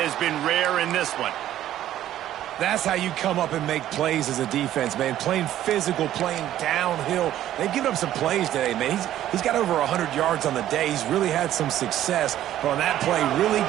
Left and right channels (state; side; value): quieter; left; 12.5 dB